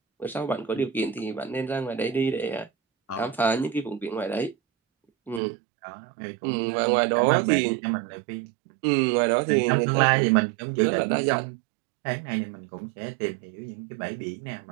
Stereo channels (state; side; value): drops out; left; at 5.4 s